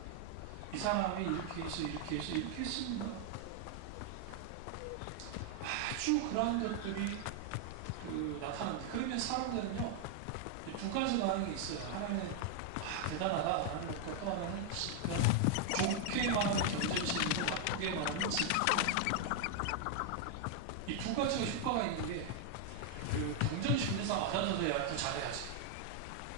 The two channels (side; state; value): both; different; correlation 0.00